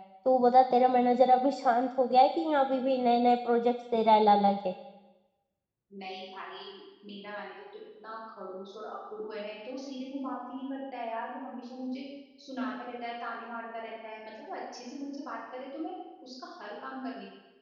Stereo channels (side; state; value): both; identical; correlation 1.00